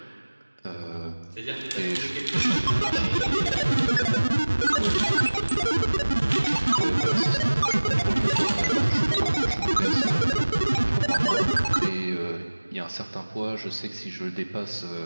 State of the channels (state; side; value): inverted; both; correlation -1.00